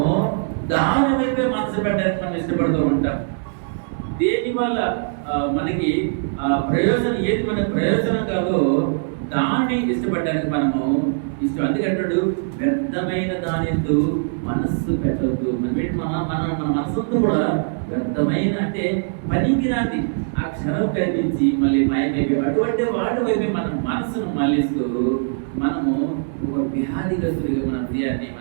దాని వైపే మనసు పెట్టడానికి మనం ఇష్టపడుతూ ఉంటాం. దేని వల్ల మనకి ప్రయోజనం, ఏది మనకి ప్రయోజనం కాదో దాన్ని ఇష్టపడడానికి మనము ఇష్టం. అందుకంటాడు వ్యర్థమైన దానితో మనస్సు పెట్టద్దు. మన మనసుతో కూడా వ్యర్థమైన అంటే పనికిరాంది ఆ క్షణం కనిపించి మళ్ళీ మాయమైపోయి అటువంటి వాటి వైపు మన మనసును మళ్ళిస్తూ మనము ఒక వ్యాధిగ్రస్తుడిగా మన హృదయాన్ని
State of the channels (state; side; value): silent; left; 60 dB below the other